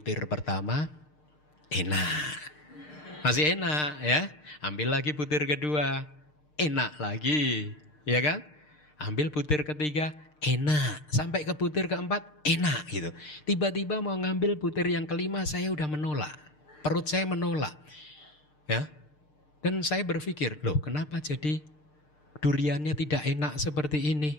pertama enak. Masih enak ya. Ambil lagi butir kedua, enak lagi, ya kan? Ambil butir ketiga, enak. Sampai ke butir keempat, enak gitu. Tiba-tiba mau ngambil butir yang kelima, saya udah menolak. Perut saya menolak. Ya. Dan saya berpikir, loh kenapa jadi duriannya tidak enak seperti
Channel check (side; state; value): right; late; 6.6 ms